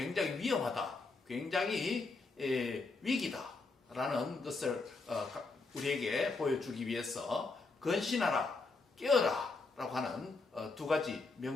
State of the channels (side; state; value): right; quieter; 3.8 dB